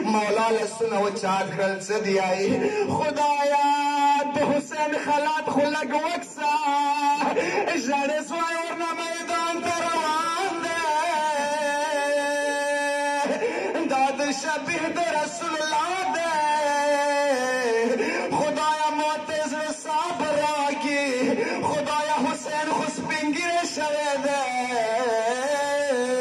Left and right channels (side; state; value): both; identical; correlation 1.00